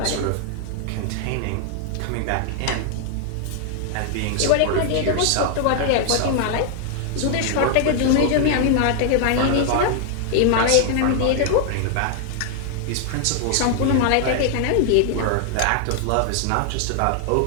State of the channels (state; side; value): different; both; correlation 0.00